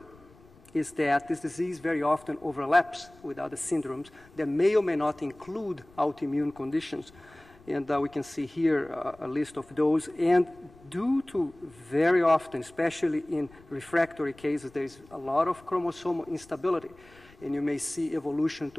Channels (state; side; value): noise; left; rumble, 25 dB below the sound